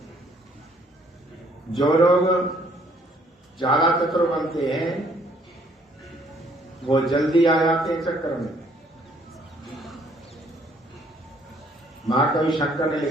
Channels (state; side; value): normal; both; correlation 0.63